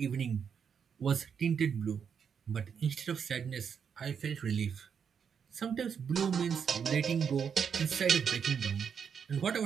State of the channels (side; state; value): left; quieter; 7.0 dB